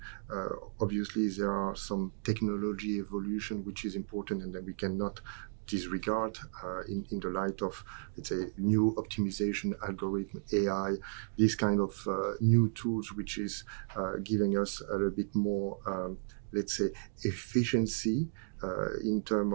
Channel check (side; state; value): left; silent; digital silence